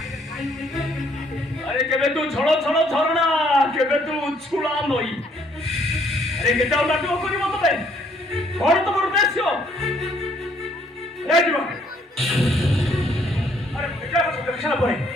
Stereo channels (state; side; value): normal; both; correlation 0.66